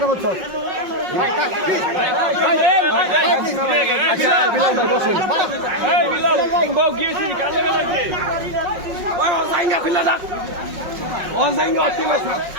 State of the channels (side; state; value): left; late; 5.5 ms